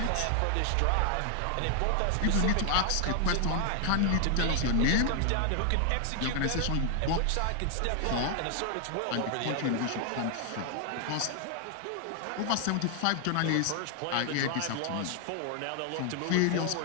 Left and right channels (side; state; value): both; different; correlation 0.00